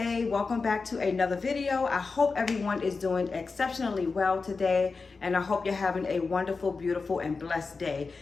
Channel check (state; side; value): quieter; right; 4.4 dB